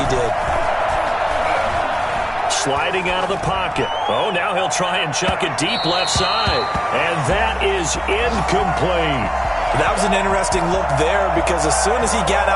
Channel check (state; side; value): identical; both; correlation 1.00